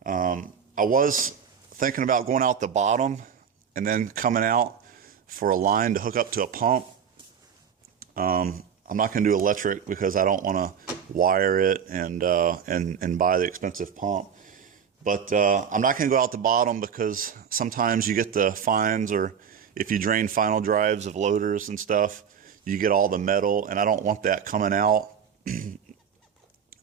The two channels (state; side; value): quieter; left; 7.5 dB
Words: I was thinking about going out the bottom and then coming out for a line to hook up to a pump. I'm not going to do electric because I don't want to wire it and buy the expensive pump. But I'm not going to go out the bottom because sometimes you get the fines, or if you drain final drives of loaders and stuff, you get all the metal, and I don't want that coming out.